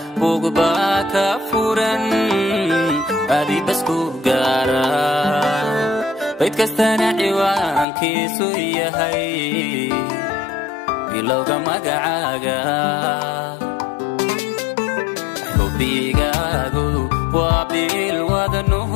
bugba ka furan adi basku gaara bayd kastana ciwaankiisu yahay bilowga magacaaga xubigaagu waa bil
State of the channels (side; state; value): right; drops out; at 7.9 s